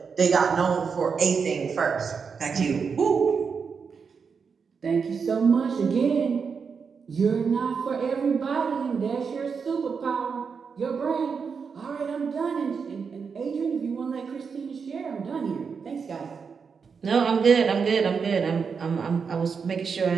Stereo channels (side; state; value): left; quieter; 5.8 dB